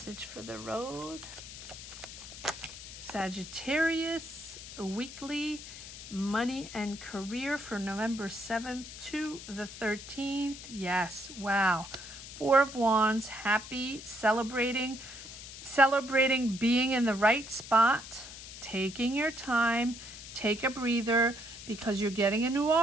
for the road. Sagittarius weekly money and career for November 7th to the 13th. Yes, wow. 4 of Wands, happy, celebrating being in the right spot, taking your time, take a breather, because you're getting a new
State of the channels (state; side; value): noise; left; hiss, 13 dB below the sound